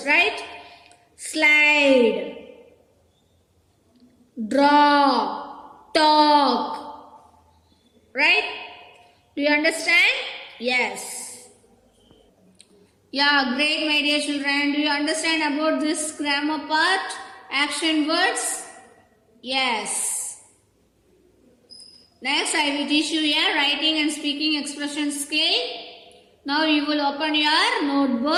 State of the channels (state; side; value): identical; both; correlation 1.00